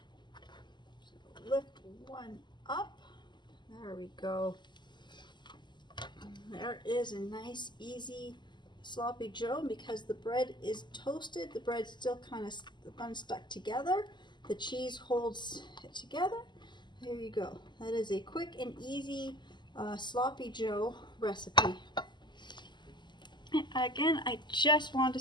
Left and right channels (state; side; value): late; right; 0.21 ms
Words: So lift one up. There we go. There is a nice, easy Sloppy Joe. Because the bread is toasted, the bread's still kind of unstuck together. The cheese holds it together. There you go. That is a quick and easy Sloppy Joe recipe. And again, I just want to